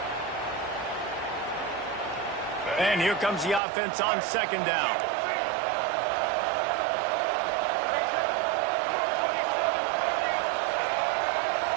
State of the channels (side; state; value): left; drops out; at 3.6 s